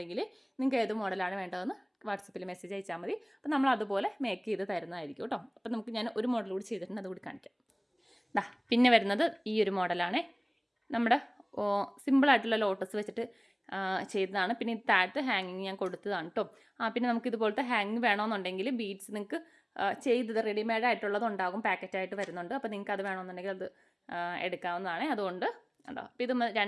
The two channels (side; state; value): both; identical; correlation 1.00